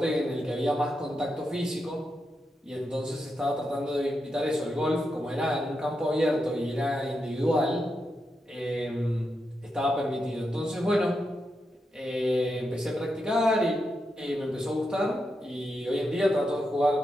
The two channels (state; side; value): normal; both; correlation 0.86